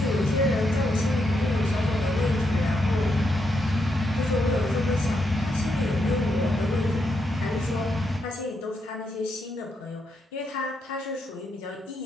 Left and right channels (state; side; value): normal; both; correlation 0.80